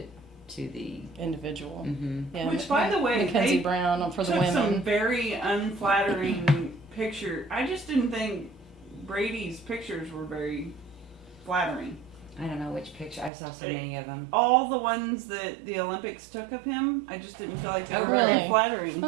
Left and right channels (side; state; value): left; drops out; at 13.3 s